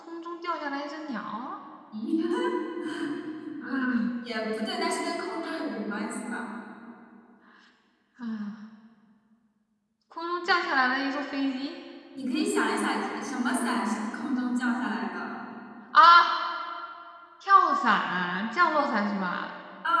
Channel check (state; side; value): identical; both; correlation 1.00